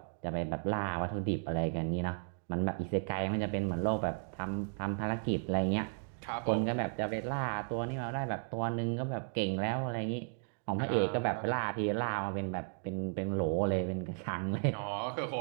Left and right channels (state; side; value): silent; left; 55 dB below the other